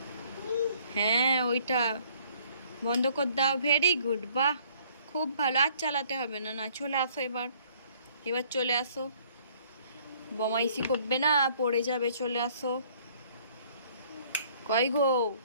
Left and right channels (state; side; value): inverted; both; correlation -0.60